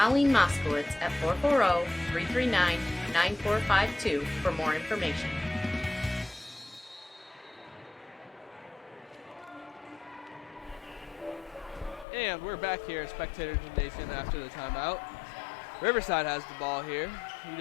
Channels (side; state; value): right; drops out; at 12.1 s